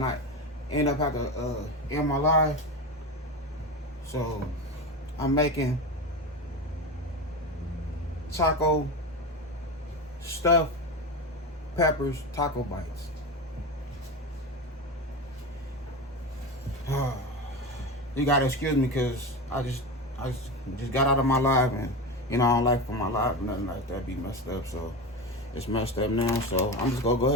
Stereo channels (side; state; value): both; normal; correlation 0.22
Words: I end up having to end my live. So, I'm making taco stuffed peppers taco bites. You gotta excuse me because I just got out of my live, and I don't like for my live or nothing like that be messed up, so it's messed up now. So I'm just gonna go